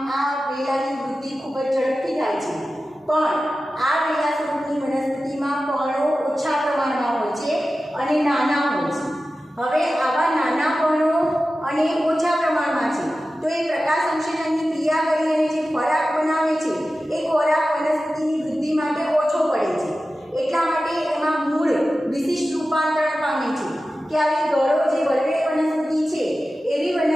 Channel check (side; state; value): both; normal; correlation 0.94